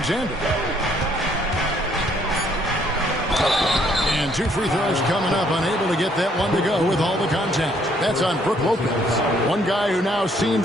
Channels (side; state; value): both; normal; correlation 0.66